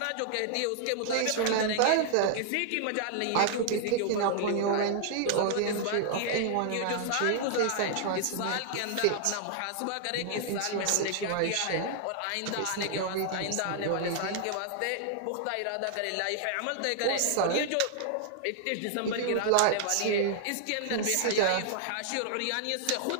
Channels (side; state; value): both; different; correlation -0.01